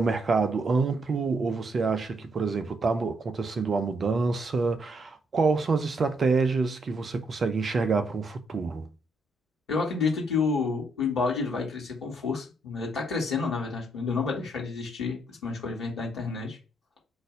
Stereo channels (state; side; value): normal; both; correlation 0.74